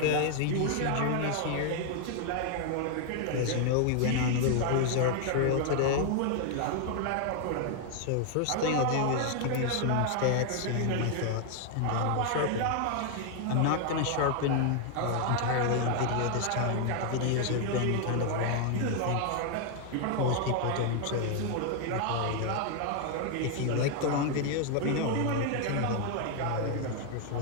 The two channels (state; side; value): different; both; correlation 0.00